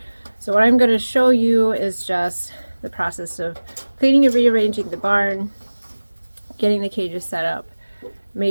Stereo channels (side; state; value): both; inverted; correlation -1.00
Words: So what I'm going to show you is just the process of cleaning and rearranging the barn, getting the cages set up,